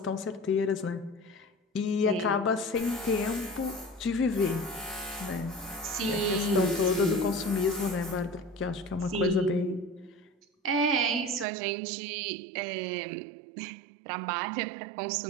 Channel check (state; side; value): drops out; left; at 11.5 s